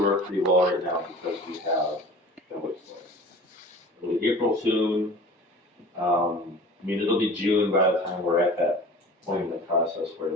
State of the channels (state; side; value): normal; both; correlation 0.41